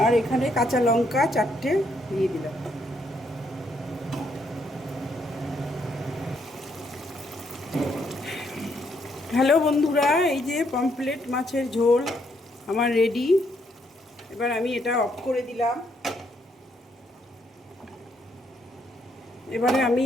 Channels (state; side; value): normal; both; correlation 0.73